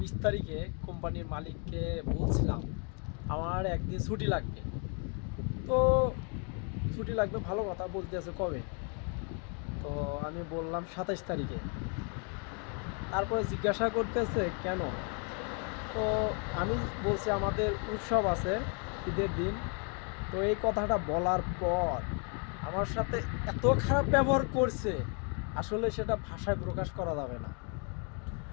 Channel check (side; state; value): right; quieter; 37.7 dB